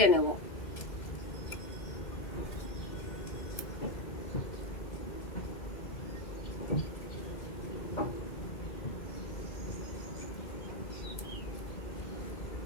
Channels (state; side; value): late; right; 2.2 ms